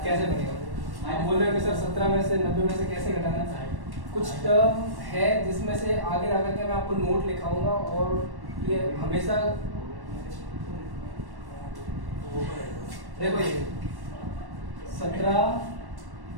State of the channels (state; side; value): late; left; 1.1 ms